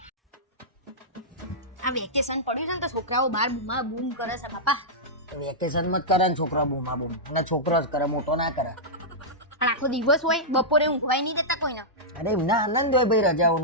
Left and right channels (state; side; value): normal; both; correlation -0.11